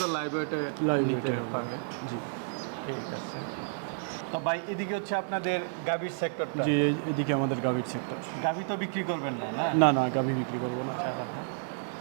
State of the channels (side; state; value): left; silent; digital silence